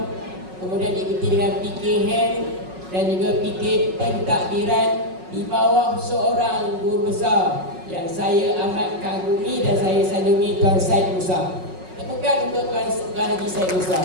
kemudian diikuti dengan PK Hem dan juga PK Pentadbiran di bawah seorang guru besar yang saya amat kagumi dan saya sanjungi, Tuan Syed Musa. Tepukan untuk Tuan Haji Syed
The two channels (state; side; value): late; left; 5.4 ms